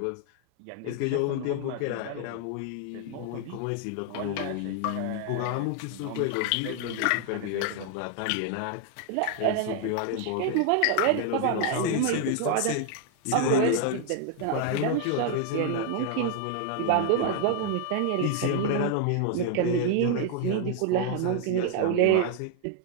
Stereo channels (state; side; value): different; both; correlation 0.00